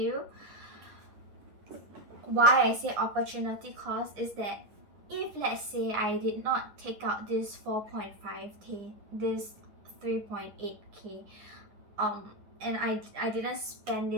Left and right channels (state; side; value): late; left; 9.7 ms